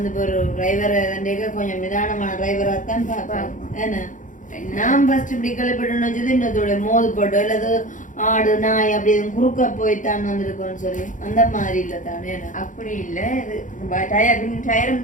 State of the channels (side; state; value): right; late; 0.37 ms